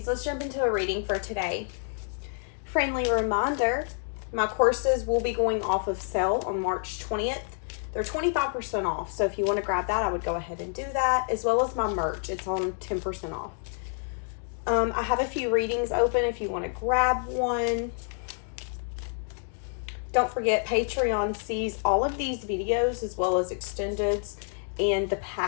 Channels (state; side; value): silent; right; 59 dB below the other